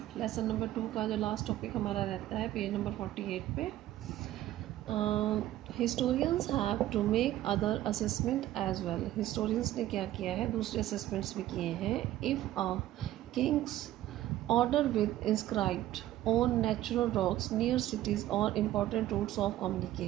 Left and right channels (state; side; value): quieter; left; 14.1 dB